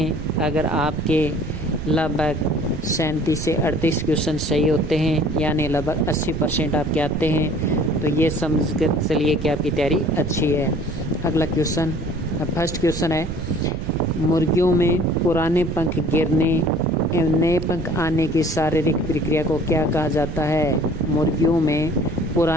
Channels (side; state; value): right; noise; rumble, 7 dB below the sound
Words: अगर आपके लगभग 37 से 38 क्वेश्चन सही होते हैं, यानी लगभग 80% आपके आते हैं, तो ये समझ कर चलिए कि आपकी तैयारी अच्छी है। अगला क्वेश्चन, फर्स्ट क्वेश्चन है, मुर्गियों में पुराने पंख गिरने एवं नए पंख आने की शारीरिक प्रक्रिया को क्या कहा जाता है? मुर्गियों में